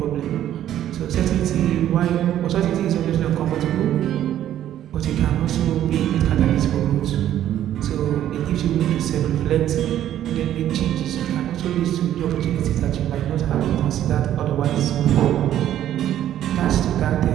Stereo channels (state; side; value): quieter; left; 11.6 dB